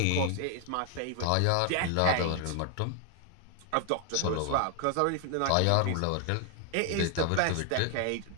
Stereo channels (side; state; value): both; different; correlation 0.00